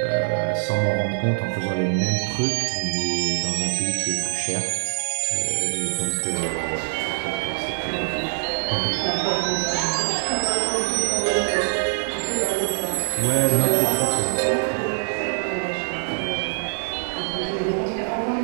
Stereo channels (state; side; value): silent; left; digital silence